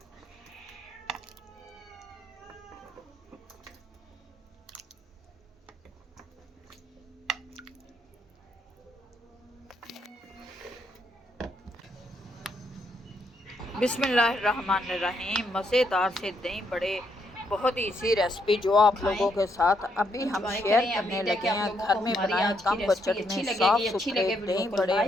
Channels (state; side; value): normal; both; correlation 0.76